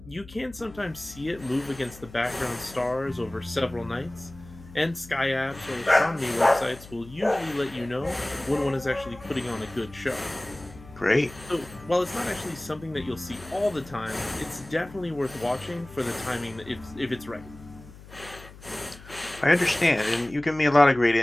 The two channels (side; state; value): left; noise; hum, 19 dB below the sound